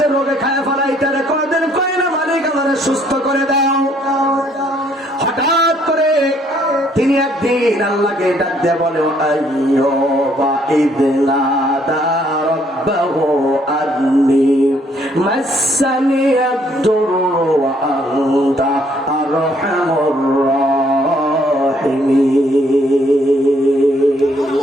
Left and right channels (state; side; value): normal; both; correlation 0.66